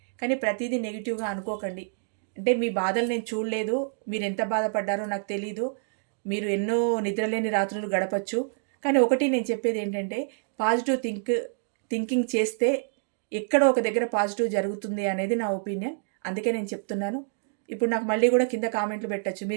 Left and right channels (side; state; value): left; silent; digital silence